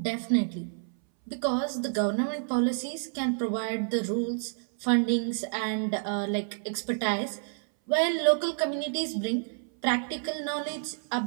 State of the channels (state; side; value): silent; left; 58 dB below the other